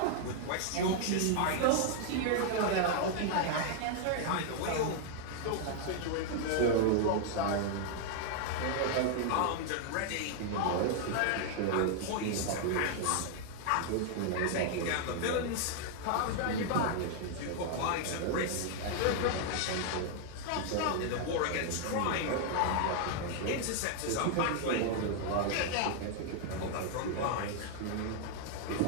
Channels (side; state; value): both; different; correlation 0.00